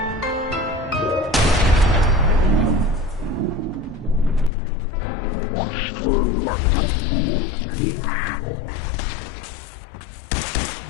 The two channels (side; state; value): right; drops out; at 4.5 s